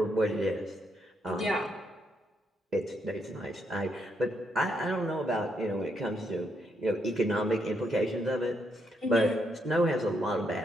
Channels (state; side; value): normal; both; correlation 0.77